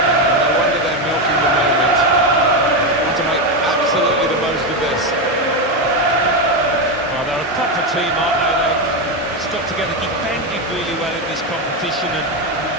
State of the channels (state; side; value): normal; both; correlation 0.10